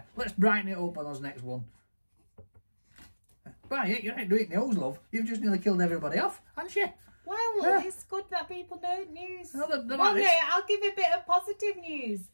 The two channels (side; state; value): both; inverted; correlation -1.00